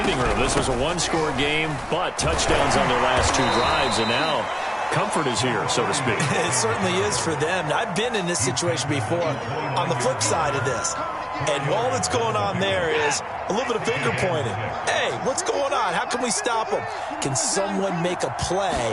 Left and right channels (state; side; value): identical; both; correlation 1.00